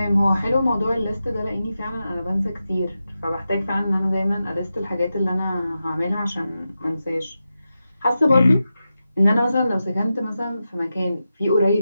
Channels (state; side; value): inverted; both; correlation -0.91